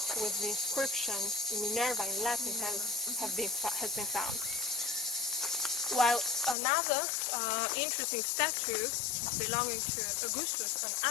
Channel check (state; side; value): drops out; right; at 6.6 s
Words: with the inscription Minerva in Latin has been found. While another interesting statue belonging to Augustus, an